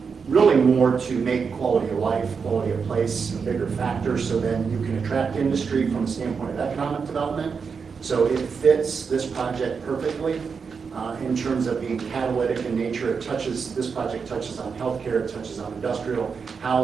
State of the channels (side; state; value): left; quieter; 5.7 dB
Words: really more to make quality of life, quality of place a bigger factor, so then you can attract industry from a standpoint of economic development. So it fits this project perfectly in terms of being catalytic in nature. This project touches on healthcare, it touches on industrial,